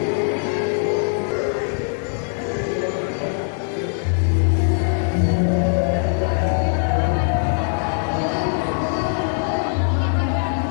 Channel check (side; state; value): right; silent; digital silence